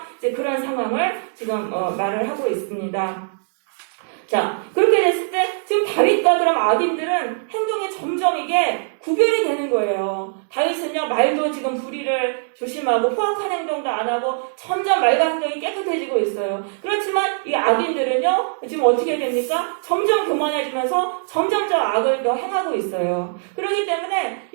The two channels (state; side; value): silent; left; digital silence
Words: 이제 그런 상황을 지금 말을 하고 있습니다. 자, 그렇게 됐을 때 지금 다윗과 그럼 악인들은 행동이 점점 이게 구별이 되는 거예요. 다윗은요, 말도 지금 불의를 조심하고 포악한 행동도 안 하고 점점 말과 행동이 깨끗해지고 있어요. 그렇지만 이 악인들은요, 지금 어떻게 됩니까? 점점 교만해지면서 점점 저 악을 더 행하고 있어요. 그렇기 때문에